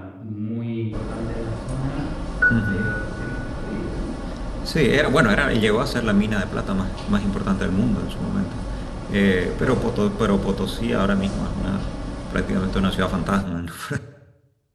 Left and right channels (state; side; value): identical; both; correlation 1.00